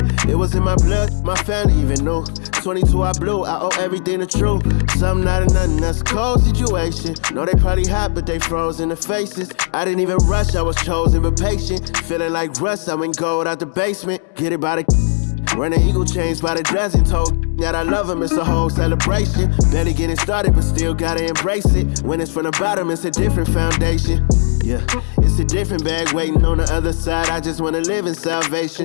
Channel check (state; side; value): silent; right; digital silence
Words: It was in my blood, my family even knew. 22 I blew, I owe everything to true. Something out of nothing, that's a cold situation. Know they probably hot, but they froze in the faces. I didn't even rush, I was chosen but patient. Feeling like Russ, I went gold out the basement. Get it by the running eagle chains by the dozen. Told that I love him, it's a whole celebration. Barely getting started, but still gotta embrace it. When it's from the bottom, it's a different foundation. Yeah, it's a different bag waiting on the other side. I just wanna live in